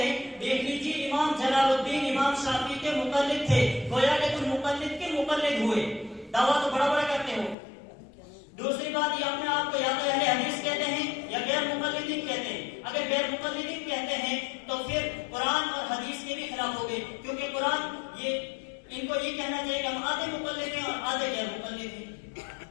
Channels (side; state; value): right; drops out; at 7.6 s